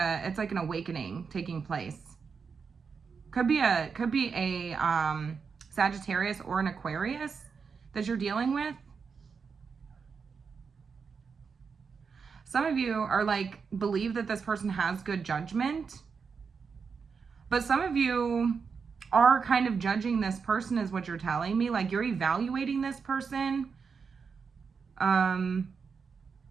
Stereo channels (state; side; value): quieter; left; 5.6 dB